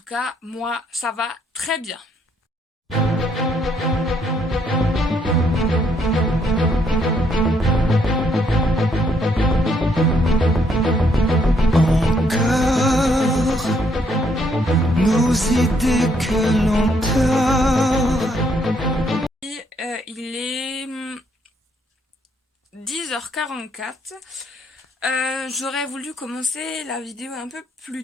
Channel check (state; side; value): normal; both; correlation 0.70